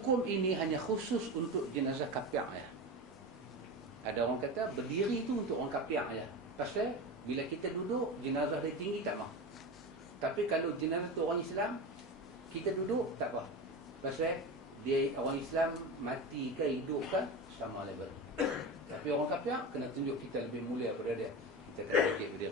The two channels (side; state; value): both; normal; correlation 0.25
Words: ini hanya khusus untuk jenazah kafir ya. Ada orang kata berdiri itu untuk orang kafir ya. Pasal bila kita duduk jenazah dia tinggi tak mau. Tapi kalau jenazah tu orang Islam, kita duduk tak apa. Pasal dia orang Islam mati ke hidup ke sama level. Tapi orang kafir kena tunjuk kita lebih mulia daripada dia. Kita kena bangkit